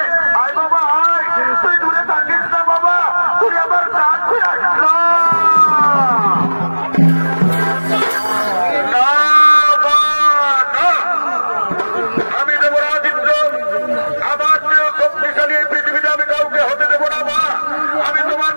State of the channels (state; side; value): inverted; both; correlation -1.00